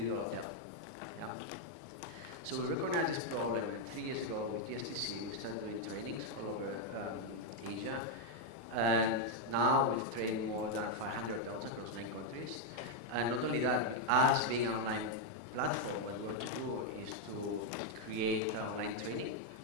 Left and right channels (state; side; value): normal; both; correlation 0.00